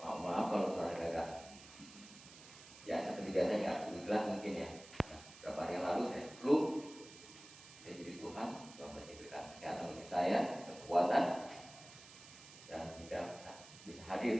Maaf kalau suara agak ya seperti biasanya jelas mungkin ya. Beberapa hari yang lalu saya flu. Saya jadi Tuhan masih berikan kesehatan bagi saya, kekuatan, dan tidak bisa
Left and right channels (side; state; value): right; noise; hiss, 18 dB below the sound